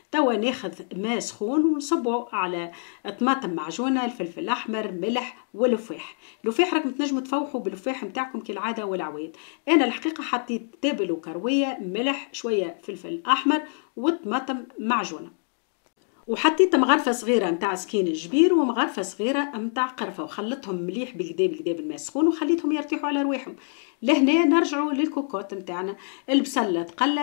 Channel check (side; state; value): right; silent; 58 dB below the other